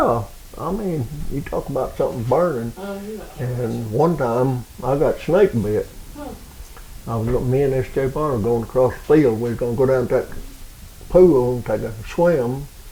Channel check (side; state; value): both; identical; correlation 1.00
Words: I mean, you talk about something burning. And one time I got snake bit. Me and S.J. Barner were going across the field. We was going to go down to that pool and take a swim.